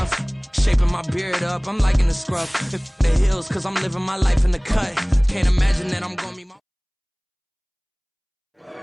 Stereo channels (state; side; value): identical; both; correlation 1.00